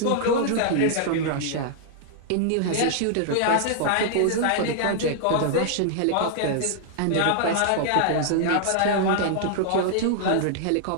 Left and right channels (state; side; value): different; both; correlation -0.01